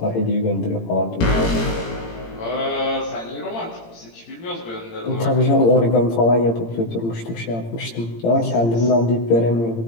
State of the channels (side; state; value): right; late; 18 ms